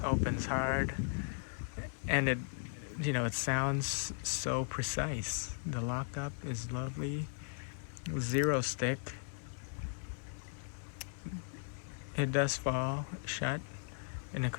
Opens hard, and it sounds so precise. The lockup is lovely. Zero stick. It does fall shut in a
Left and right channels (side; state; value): right; silent; 53 dB below the other